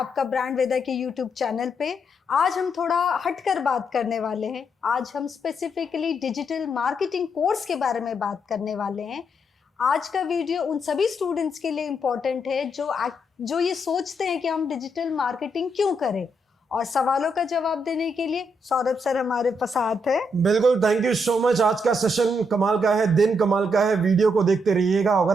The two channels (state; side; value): normal; both; correlation 0.78